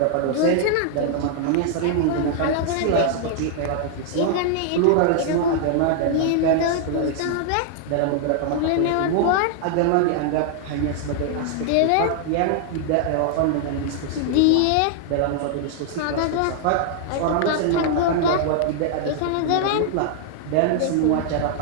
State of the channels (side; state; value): both; different; correlation -0.01